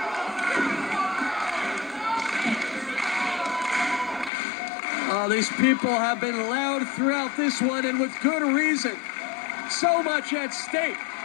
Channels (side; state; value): right; drops out; at 4.3 s